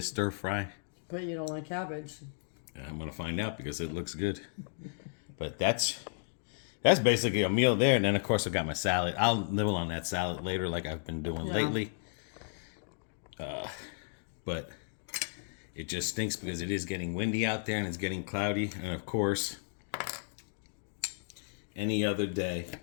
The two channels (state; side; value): silent; right; digital silence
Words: stir fry. But you don't like cabbage. And I'm gonna find out because it looks good. But that's basically a meal there. And then of course I got my salad. I'll nibble on that salad later, like I've been doing lately. But it just stinks because it is getting windy out there and it's getting cloudy. And of course, any other day.